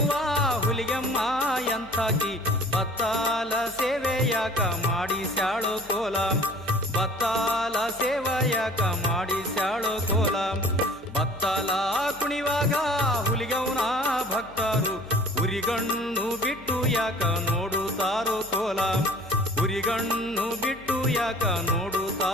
ಹುಲಿಗೆಮ್ಮ ಎಂಥಾಕಿ ಬತ್ತಾಲ ಸೇವೆ ಯಾಕ ಮಾಡಿಸ್ಯಾಳೋ ಕೋಲ ಬತ್ತಾಲ ಸೇವೆ ಯಾಕ ಮಾಡಿಸ್ಯಾಳೋ ಕೋಲ ಬತ್ತಾಲ ಕುಣಿವಾಗ ಹುಲಿಗೌನ ಭಕ್ತರು ಉರಿಗಣ್ಣು ಬಿಟ್ಟು ಯಾಕ ನೋಡುತ್ತಾರೋ ಕೋಲ ಉರಿಗಣ್ಣು ಬಿಟ್ಟು ಯಾಕ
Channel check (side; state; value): left; noise; hum, 22 dB below the sound